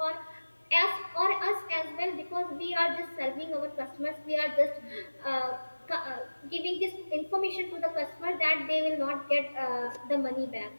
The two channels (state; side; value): inverted; both; correlation -1.00